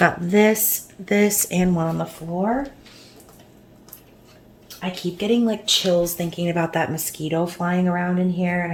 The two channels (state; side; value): identical; both; correlation 1.00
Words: this, and one on the floor. I keep getting like chills thinking about that mosquito flying around in here, and